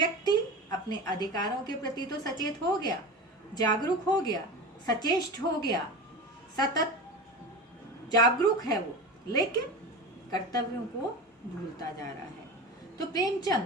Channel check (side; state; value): both; normal; correlation 0.29